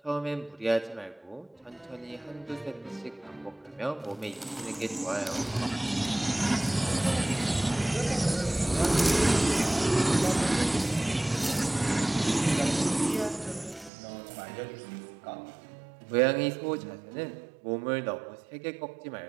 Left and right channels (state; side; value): drops out; left; at 13.9 s